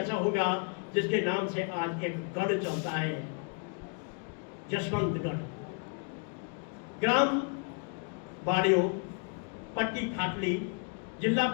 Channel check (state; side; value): quieter; right; 38.9 dB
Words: होगा जिसके नाम से आज एक गढ़ चलता है, जसवंतगढ़। ग्राम बाड़ियो, पट्टी खाटली, जिला